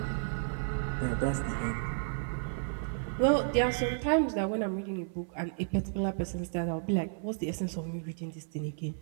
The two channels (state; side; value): silent; left; 56 dB below the other